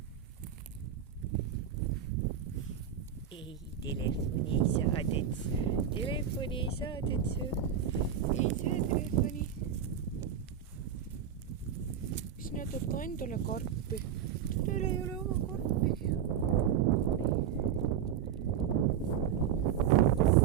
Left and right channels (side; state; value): left; quieter; 8.7 dB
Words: Ei, telefoni ei saadets. Telefoni ei saadets. Ei saa telefoni. Sina tood ka endale karpi. Teil ei ole oma karpi.